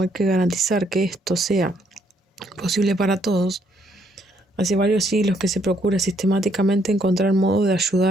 hay que garantizar que esto sea posible para todos. Hace varios siglos que se procura sistemáticamente encontrar modos de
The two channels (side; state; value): both; normal; correlation 0.70